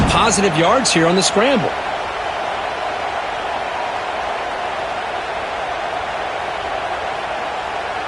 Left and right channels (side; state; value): both; identical; correlation 1.00